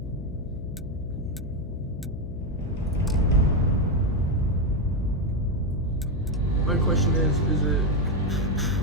My question is it...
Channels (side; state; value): left; noise; hum, 10 dB below the sound